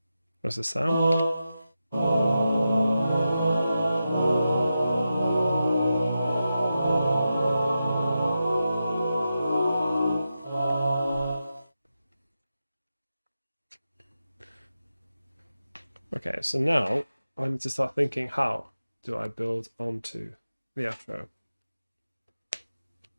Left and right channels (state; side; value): inverted; both; correlation -0.90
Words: What's the sound? Okay, so now I need to start thinking, how do I build onto the outro?